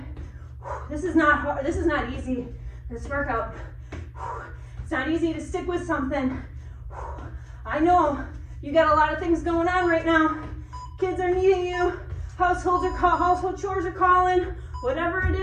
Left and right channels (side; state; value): both; identical; correlation 1.00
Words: This is not hard. This is not easy. This workout. It's not easy to stick with something. I know you got a lot of things going on right now. Kids are needing you. Household chores are calling. Whatever it